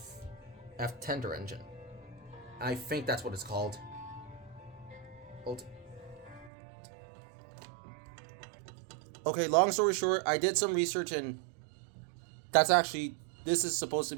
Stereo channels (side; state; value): left; drops out; at 6.5 s